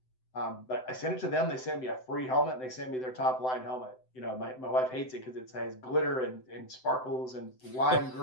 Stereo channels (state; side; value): late; right; 7.8 ms